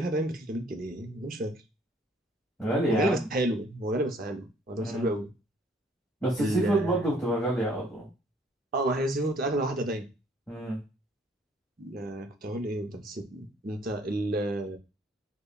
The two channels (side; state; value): both; normal; correlation 0.61